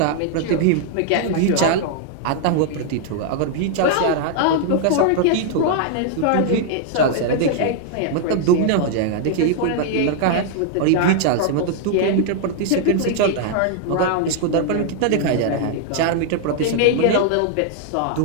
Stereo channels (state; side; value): different; both; correlation 0.00